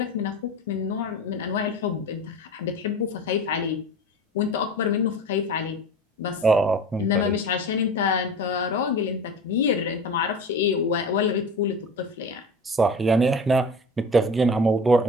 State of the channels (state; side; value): normal; both; correlation 0.34